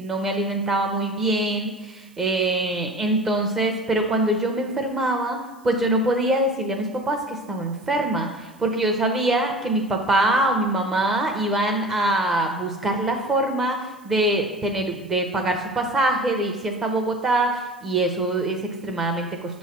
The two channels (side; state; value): right; noise; hiss, 30 dB below the sound